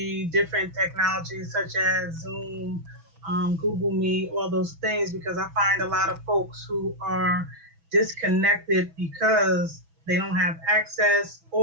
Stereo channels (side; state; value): left; late; 6.1 ms